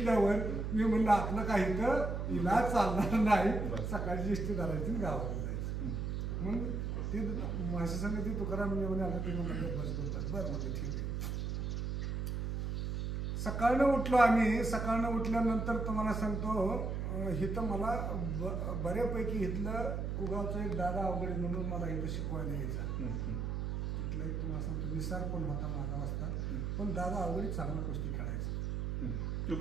मी म्हणलं आपलं काही तर इलाज चालणार नाही, सकाळची इष्टी धरायची गावाला जायचं. मग ते माझ्या संग ती तुकाराम म्हणे आलं ते म्हणलं बस बोलतात बरं म्हणजे ठीक आहे. सकाळनं उठलो आम्ही. सकाळनं उठल्यानंतर तुम्हाला सांगतो इथं मला बऱ्यापैकी इथलं कुगावचं एक दादा अवघडे म्हणून मला इथं शिकवायला यायचा. तिथलं एक तुम्हाला सांगतो निसार पण होता माझा वाजता, पण दादा अवघडे चांगला कुस्ती खेळायचा.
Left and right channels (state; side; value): noise; right; hum, 1 dB below the sound